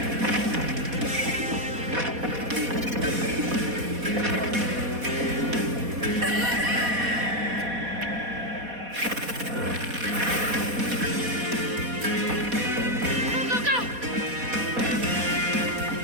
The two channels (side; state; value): left; late; 4.1 ms